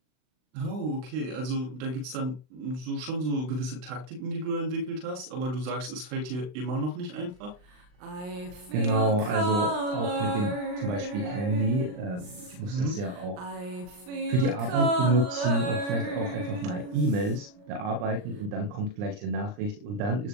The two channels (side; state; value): left; late; 39 ms